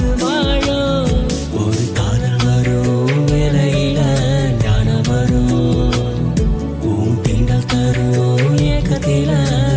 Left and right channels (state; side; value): identical; both; correlation 1.00